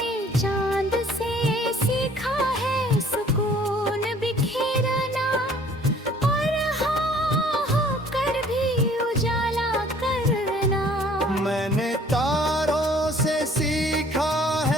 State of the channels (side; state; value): both; normal; correlation 0.55